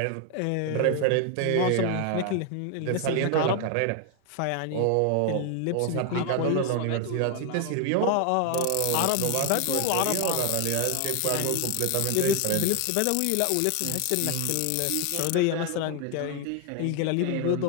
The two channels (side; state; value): both; different; correlation 0.00